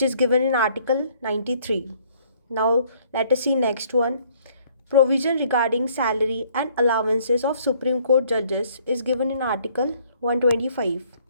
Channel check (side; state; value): both; inverted; correlation -0.62